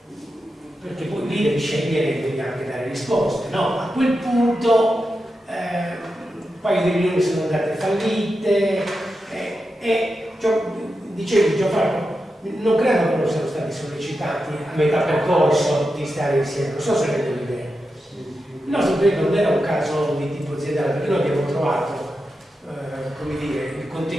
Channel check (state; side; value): normal; both; correlation 0.89